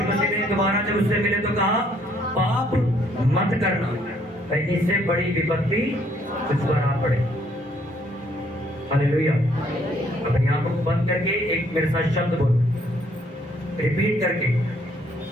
मसीह ने दोबारा जब उससे मिले तो कहा, पाप मत करना, कहीं इससे बड़ी विपत्ति तुझ पर आ पड़े। हालेलुया। अपनी आंखों को बंद करके एक मेरे साथ शब्द बोलो, रिपीट करके,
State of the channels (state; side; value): normal; both; correlation 0.66